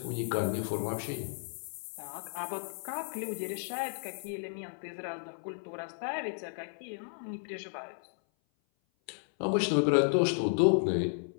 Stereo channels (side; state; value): right; silent; 56 dB below the other